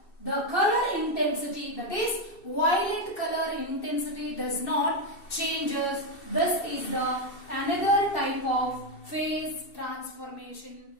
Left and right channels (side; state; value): right; late; 2.7 ms